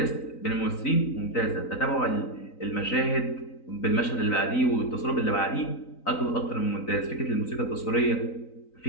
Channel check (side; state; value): right; late; 3.9 ms